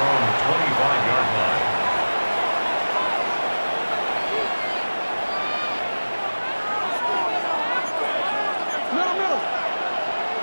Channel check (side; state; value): both; inverted; correlation -1.00